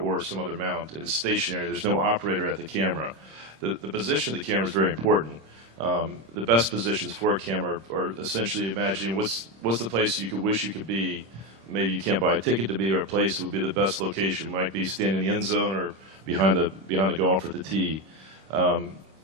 some other mount, and it's stationary. There's no operator at the camera. The position of the camera is very important. The best positions for a camera are essentially imagining what's the place you could wish you could be. Maybe you can't buy a ticket to be, or a place that would be the best location. Might be standing in the end zone or behind the golfer at the tee.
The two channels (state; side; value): late; left; 26 ms